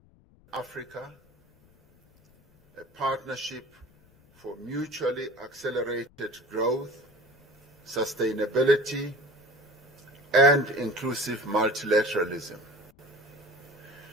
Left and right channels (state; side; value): noise; left; rumble, 29 dB below the sound